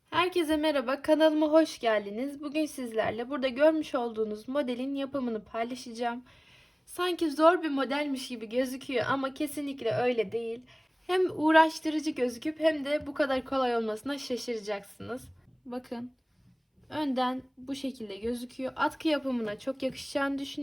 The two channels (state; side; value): identical; both; correlation 1.00